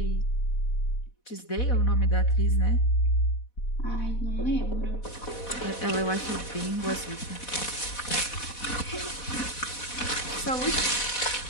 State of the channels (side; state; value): right; late; 4.1 ms